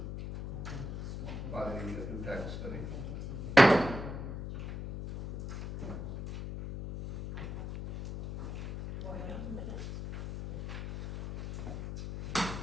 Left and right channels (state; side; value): noise; left; hum, 6 dB below the sound